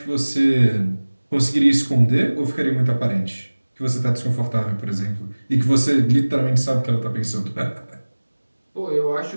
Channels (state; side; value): inverted; both; correlation -1.00